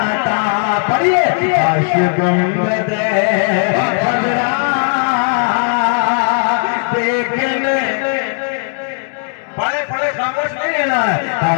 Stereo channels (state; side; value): silent; right; 56 dB below the other